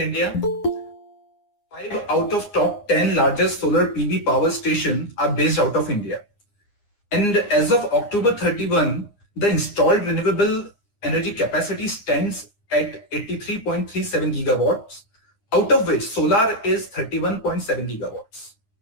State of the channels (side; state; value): right; late; 9.7 ms